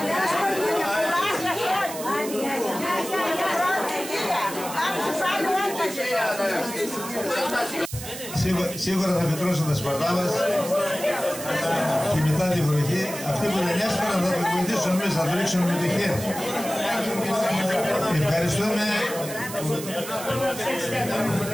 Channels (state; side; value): noise; right; hiss, 10 dB below the sound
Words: Σίγουρα θα φυτρώσουν τα σπαρτά μας και μετά τη βροχή. Αυτοί που δεν έσπαραν θα το βοηθήσουν εμείς, θα το ρίξουν με το χέρι.